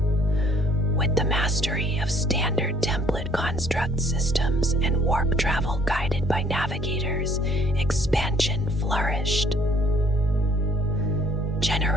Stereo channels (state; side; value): normal; both; correlation 0.61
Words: With the mastery of standard template construct systems and warp travel guided by navigators, expansion flourished.